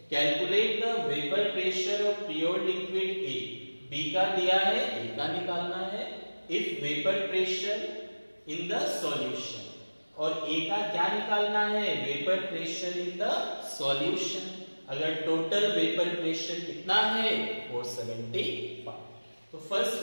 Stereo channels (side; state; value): both; inverted; correlation -1.00